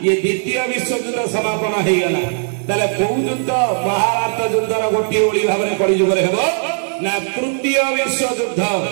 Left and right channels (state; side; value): silent; left; digital silence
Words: ये द्वितीय विश्व युद्ध समापन हो गला ताले कौ युद्ध महाभारत युद्धर गोटे ओली भाव में कली जुग ना तृतीय विश्व युद्ध